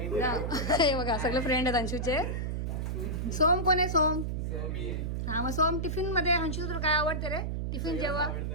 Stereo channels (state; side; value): noise; right; hum, 2 dB below the sound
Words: बघा. हे बघा सगळे फ्रेंड आहेत अंशूचे. सोम कोण आहे? सोम. हा मग सोम टिफिन मध्ये अंशू तुला काय आवडते रे? टिफिन जेव्हा